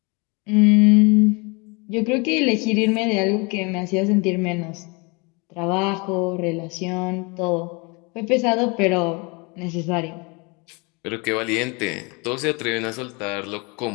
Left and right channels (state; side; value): quieter; right; 29.4 dB